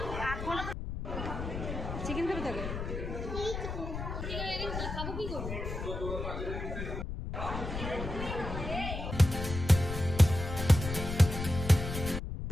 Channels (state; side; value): noise; left; rumble, 5 dB below the sound